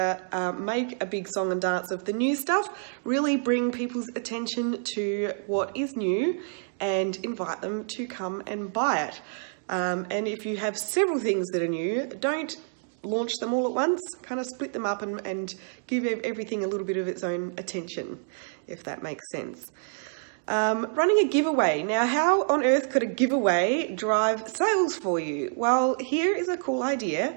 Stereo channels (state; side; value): silent; left; digital silence